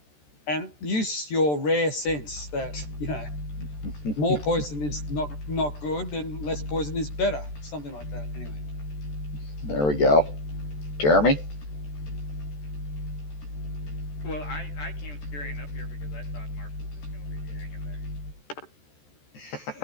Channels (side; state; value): right; late; 14 ms